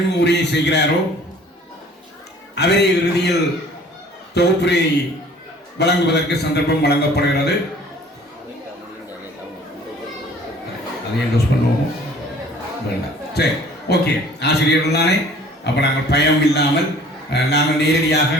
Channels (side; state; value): both; normal; correlation 0.51